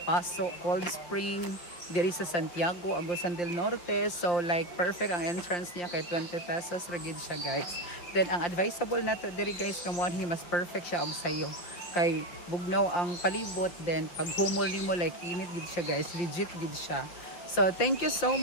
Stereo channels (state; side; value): late; right; 5.8 ms